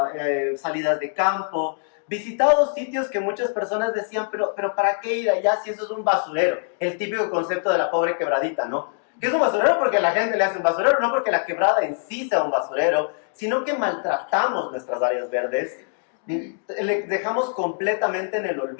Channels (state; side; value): silent; right; digital silence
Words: salidas de campo, visitado sitios que muchas personas decían, pero ¿para qué ir allá si eso es un basurero? El típico concepto de la pobre quebradita, ¿no? Que es un basurero porque la gente le hace un basurero, no porque la quebrada en sí sea un basurero, sino que maltratamos nuestras áreas verdes, le dejamos completamente en el